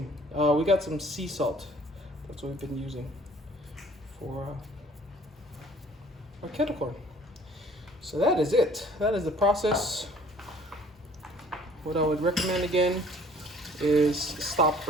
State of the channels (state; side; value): normal; both; correlation 0.54